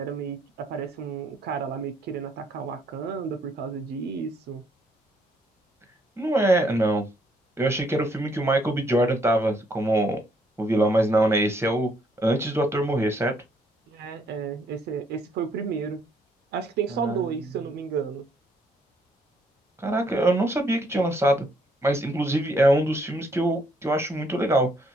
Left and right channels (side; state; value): both; normal; correlation 0.69